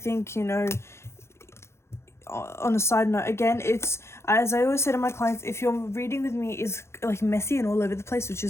you know, on a side note, again, it's, as I always say to my clients, if your reading with me is like messy and all over the place, which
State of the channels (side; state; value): right; late; 0.13 ms